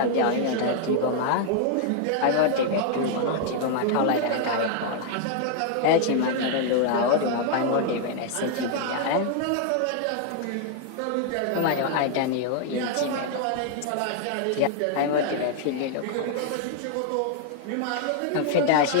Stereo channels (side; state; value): both; different; correlation 0.00